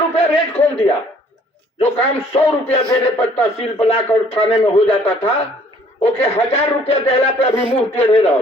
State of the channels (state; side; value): normal; both; correlation 0.58